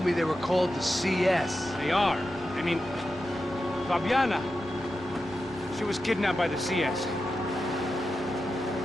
me they were called the CS? They are. I mean, Fabiana. She was kidnapped by the CS.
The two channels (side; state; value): both; normal; correlation 0.90